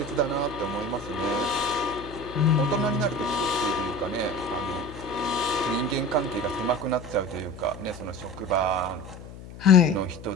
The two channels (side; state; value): left; noise; hum, 15 dB below the sound